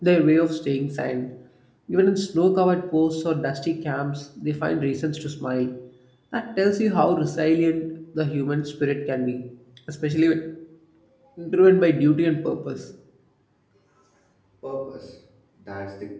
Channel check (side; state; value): both; identical; correlation 1.00